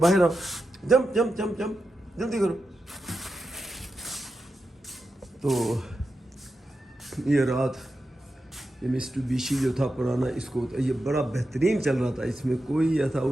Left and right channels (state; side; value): normal; both; correlation 0.89